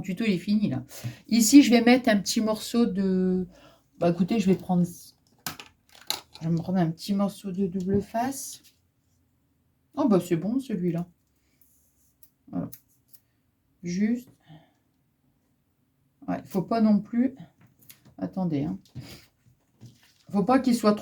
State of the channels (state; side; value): identical; both; correlation 1.00